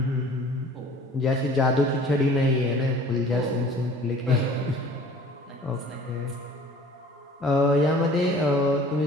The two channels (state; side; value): normal; both; correlation 0.48